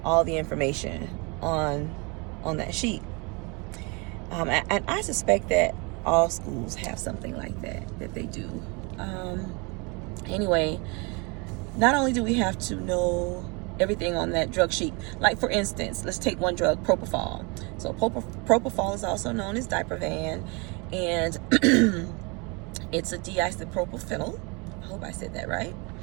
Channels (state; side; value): quieter; left; 30.0 dB